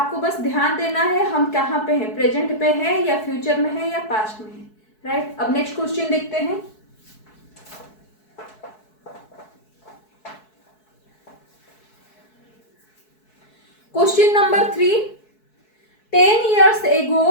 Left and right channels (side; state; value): right; late; 4.6 ms